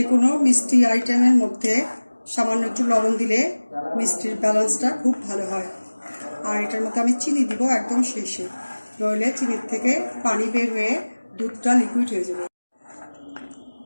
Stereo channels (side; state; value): both; inverted; correlation -1.00